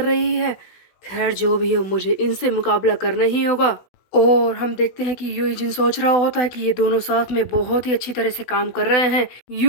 रही है। खैर जो भी हो, मुझे इनसे मुकाबला करना ही होगा। और हम देखते हैं कि यूजिन सोच रहा होता है कि ये दोनों साथ में बहुत ही अच्छी तरह से काम कर रहे हैं।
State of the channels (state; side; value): late; right; 16 ms